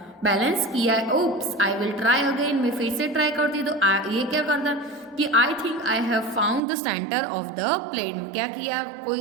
बैलेंस किया है। Oops I will try again, मैं फिर से ट्राई करती तो ये क्या करता कि आई think I have found the centre of the plate, क्या किया, कोई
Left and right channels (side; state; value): left; drops out; at 6.6 s